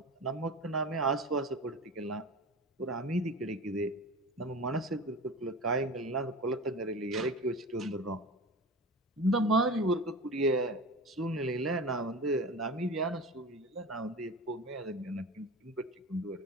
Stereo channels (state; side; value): normal; both; correlation 0.31